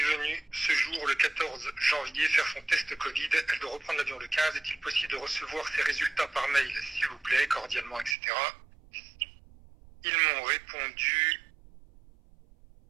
venue ce jour, le 14 janvier, faire son test Covid. Elle doit reprendre l'avion le 15. Est-il possible de recevoir ses résultats par mail, s'il vous plaît, cordialement, etc. Ils m'ont répondu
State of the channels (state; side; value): drops out; left; at 8.2 s